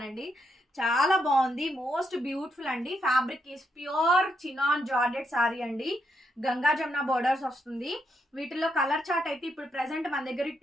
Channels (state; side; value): normal; both; correlation 0.79